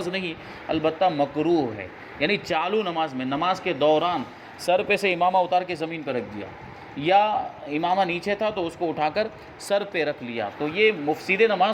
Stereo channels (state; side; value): identical; both; correlation 1.00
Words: نہیں، البتہ مکروہ ہے، یعنی چالو نماز میں، نماز کے دوران سر پہ سے امامہ اتار کے زمین پہ رکھ دیا، یا امامہ نیچے تھا تو اس کو اٹھا کر سر پہ رکھ لیا، تو یہ مفسد